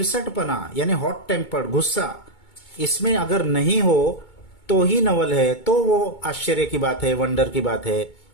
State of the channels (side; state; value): right; late; 2.2 ms